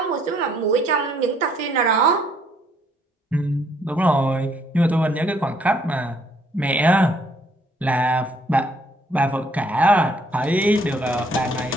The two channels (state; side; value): normal; both; correlation 0.66